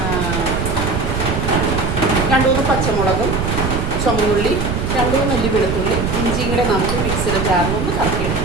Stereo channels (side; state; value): right; noise; rumble, 2 dB below the sound